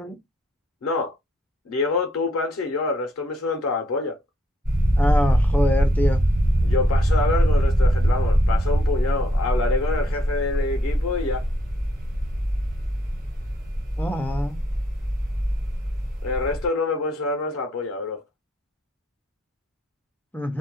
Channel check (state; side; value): normal; both; correlation 0.72